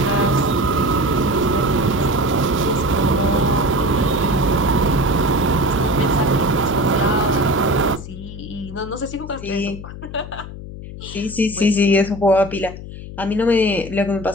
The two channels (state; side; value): noise; left; hum, 12 dB below the sound